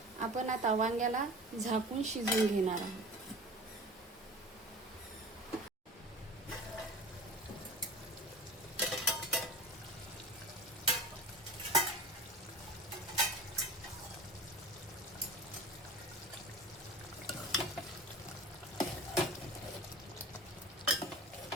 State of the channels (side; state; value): both; normal; correlation 0.37